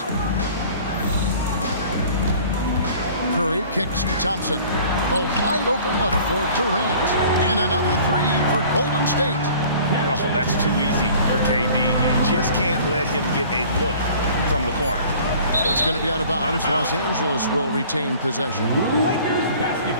Curry kicks to Thompson. The wide open look for Durant. And another 3 for Golden State. Oh, that's too easy for KD. You just can't let him get a look from the corner. It's going to be out of bounds. Los Angeles will retain possession. Lakers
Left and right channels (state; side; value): inverted; both; correlation -0.48